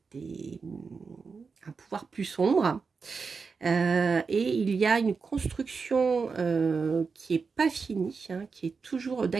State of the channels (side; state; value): left; quieter; 5.0 dB